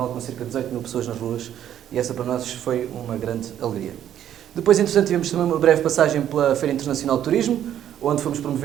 com cerca de 18 mil pessoas nas ruas, e essa para nós foi uma grande alegria. Depois, entretanto, tivemos também uma breve passagem pela Feira Internacional de Turismo, onde fomos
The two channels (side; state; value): left; quieter; 10.6 dB